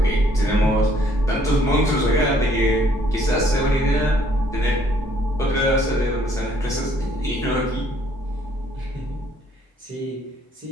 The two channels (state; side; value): normal; both; correlation 0.64